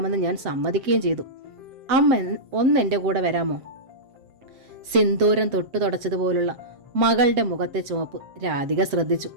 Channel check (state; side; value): late; left; 7.5 ms